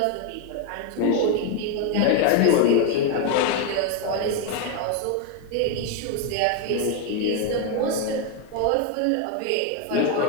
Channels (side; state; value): both; different; correlation 0.01